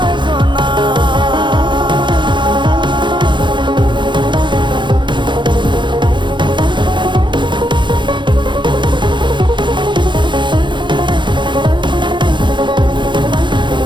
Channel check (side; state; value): left; late; 0.23 ms